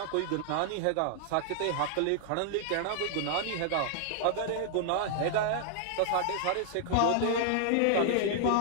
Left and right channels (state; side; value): different; both; correlation -0.01